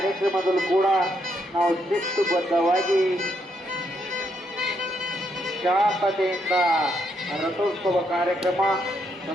ಕೂಡ ನಾವು ಶಿಸ್ತುಬದ್ಧವಾಗಿ ಶಾಂತತೆಯಿಂದ ರಥೋತ್ಸವ ಕಾರ್ಯಕ್ರಮ,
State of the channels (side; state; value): both; normal; correlation 0.76